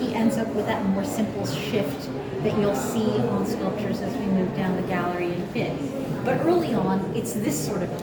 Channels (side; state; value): both; identical; correlation 1.00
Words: ends up with that more simple shift that you'll see on sculptures as we move down the gallery in bit. But early on, it's this sort of